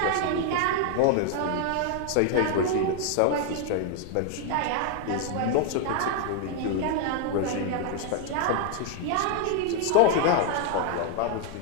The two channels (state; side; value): different; both; correlation 0.00